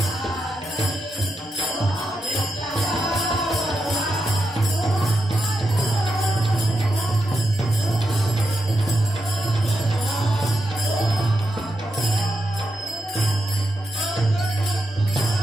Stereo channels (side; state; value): both; normal; correlation 0.85